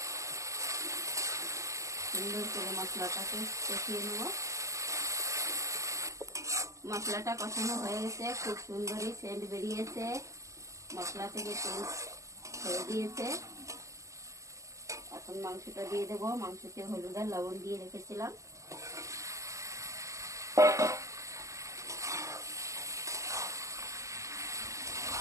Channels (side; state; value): left; late; 0.15 ms